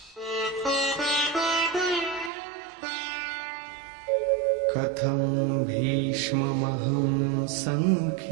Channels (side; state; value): left; drops out; at 2.3 s